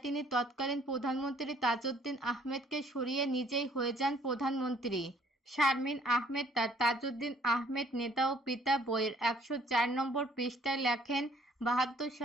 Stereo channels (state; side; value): normal; both; correlation 0.61